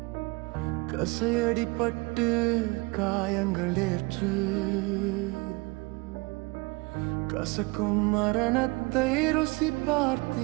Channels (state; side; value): quieter; left; 26.4 dB